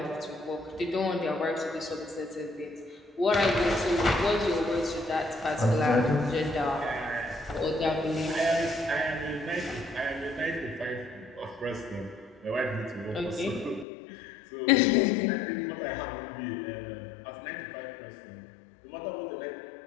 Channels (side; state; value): right; drops out; at 13.9 s